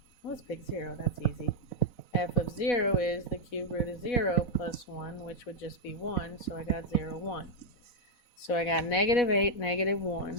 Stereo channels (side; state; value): right; late; 4.1 ms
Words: Let's pick 0, that's easy. F of 0 is the cube root of 0 plus 1, which would just be 1, so I got 0, 1. So I got negative 8, negative